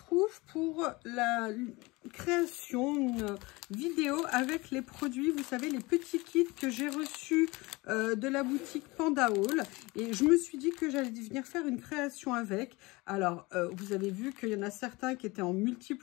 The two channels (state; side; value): quieter; right; 23.3 dB